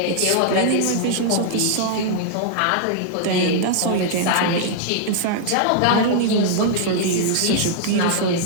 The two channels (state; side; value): different; both; correlation -0.01